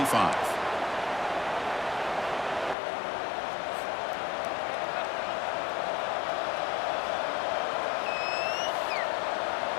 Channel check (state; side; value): drops out; right; at 2.8 s